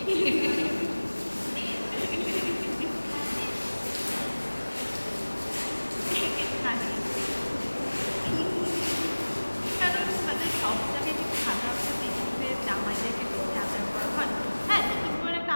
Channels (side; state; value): both; inverted; correlation -1.00